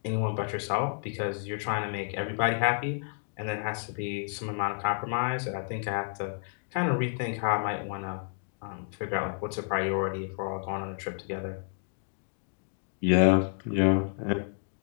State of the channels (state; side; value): silent; right; digital silence